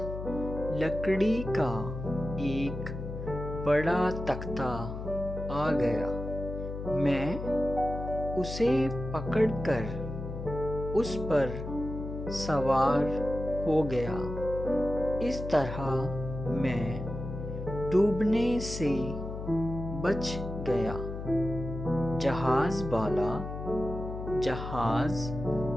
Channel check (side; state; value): left; noise; hum, 7 dB below the sound